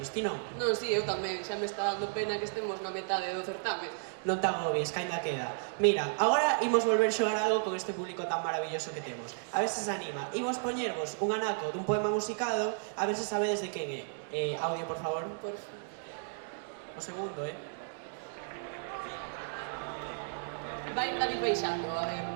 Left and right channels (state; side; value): silent; left; digital silence